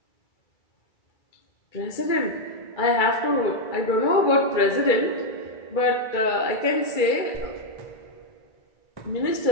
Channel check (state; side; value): late; right; 2.3 ms